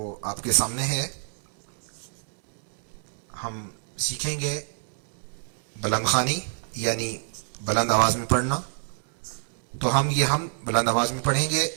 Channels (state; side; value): silent; left; digital silence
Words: آپ کے سامنے ہے۔ ہم سیکھیں گے بلند خوانی یعنی بلند آواز میں پڑھنا۔ تو ہم بلند آواز میں پڑھیں گے